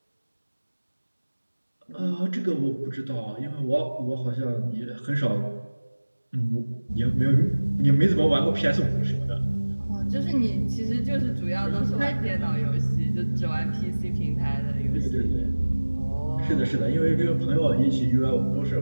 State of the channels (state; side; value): inverted; both; correlation -1.00